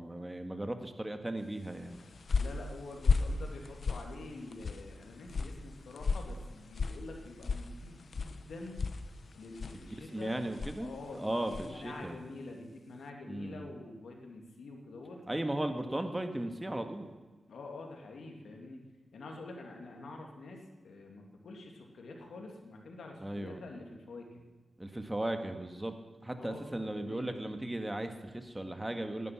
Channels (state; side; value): normal; both; correlation 0.92